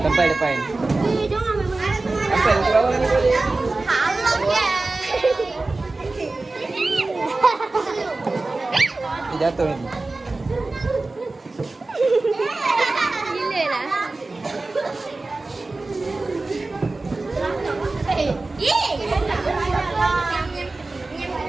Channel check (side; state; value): left; quieter; 3.3 dB